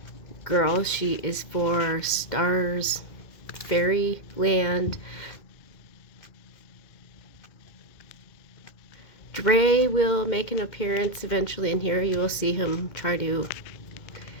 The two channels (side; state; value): right; late; 2.1 ms